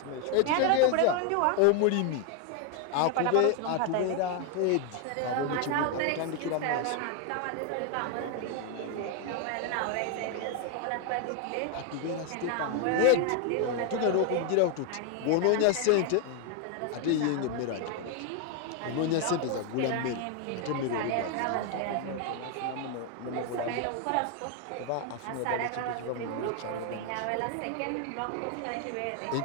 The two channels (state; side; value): different; both; correlation 0.01